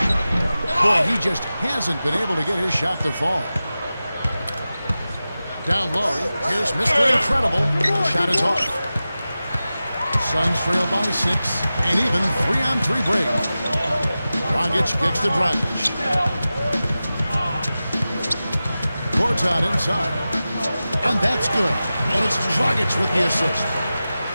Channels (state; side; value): inverted; both; correlation -0.95